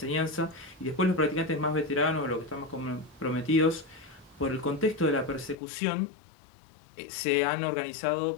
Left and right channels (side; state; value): right; drops out; at 5.6 s